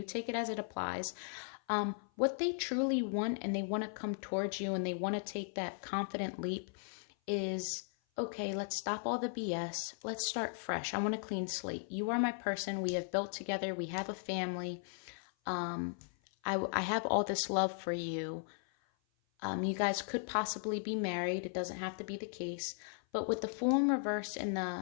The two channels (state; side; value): silent; right; 53 dB below the other